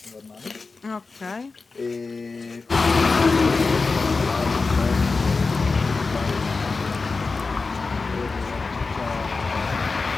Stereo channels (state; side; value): quieter; right; 4.1 dB